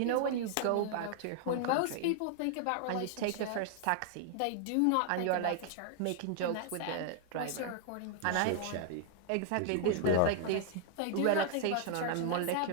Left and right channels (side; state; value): both; different; correlation 0.00